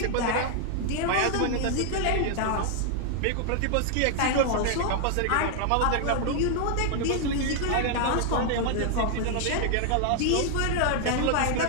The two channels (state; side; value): different; both; correlation 0.00